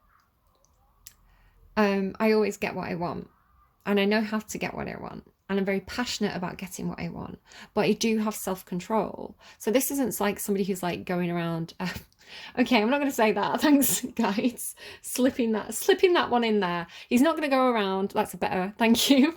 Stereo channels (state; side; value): identical; both; correlation 1.00